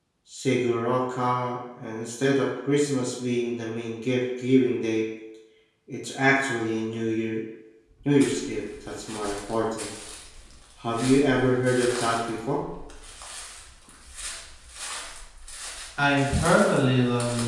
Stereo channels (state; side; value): identical; both; correlation 1.00